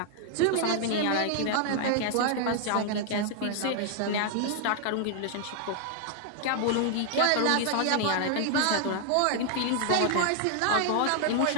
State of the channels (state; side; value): different; both; correlation 0.00